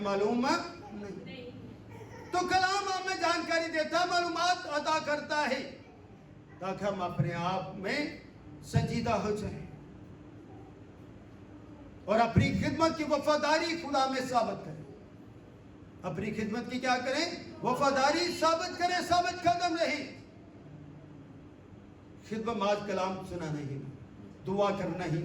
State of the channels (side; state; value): both; identical; correlation 1.00